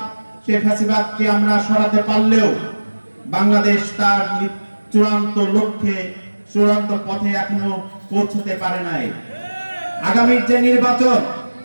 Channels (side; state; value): both; inverted; correlation -1.00